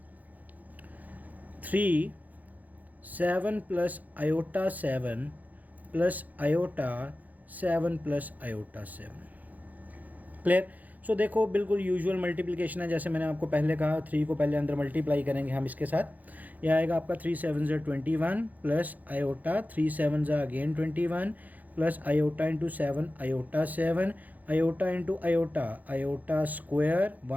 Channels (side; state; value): left; late; 0.080 ms